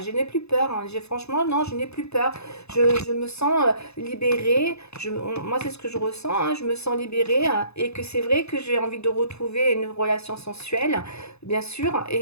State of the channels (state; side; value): late; right; 0.79 ms